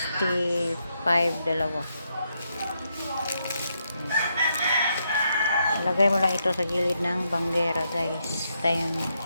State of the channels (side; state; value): both; inverted; correlation -0.80